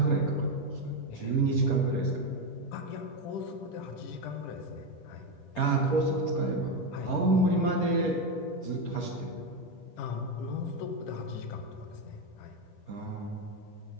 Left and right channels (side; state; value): right; late; 9.7 ms